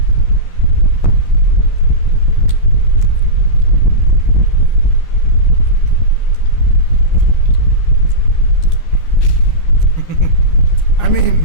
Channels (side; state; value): right; late; 11 ms